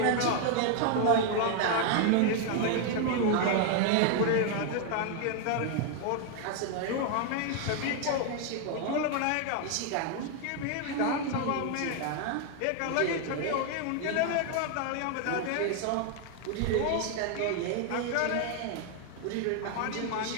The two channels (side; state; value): both; different; correlation 0.00